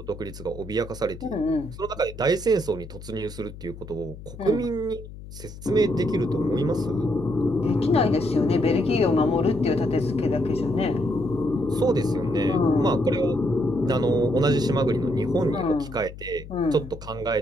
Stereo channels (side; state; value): left; noise; hum, 14 dB below the sound